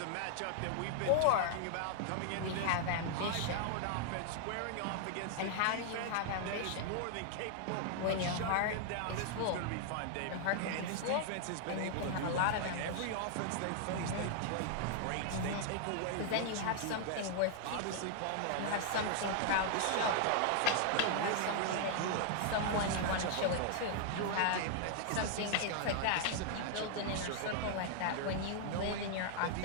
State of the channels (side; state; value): both; different; correlation 0.00